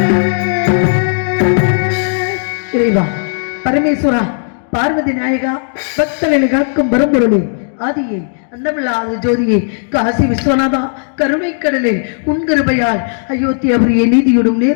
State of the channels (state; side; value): silent; right; digital silence